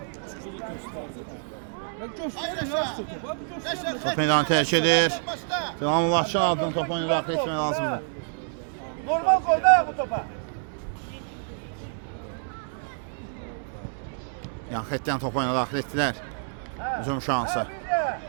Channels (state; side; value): silent; left; 60 dB below the other